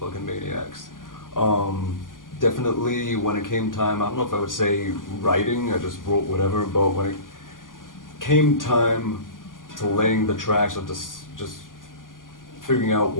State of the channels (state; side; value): late; right; 0.89 ms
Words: maniacs. Definitely when it came time, I don't know if I would say writing, I just wrote whatever, but when it came time to laying the tracks or just figuring out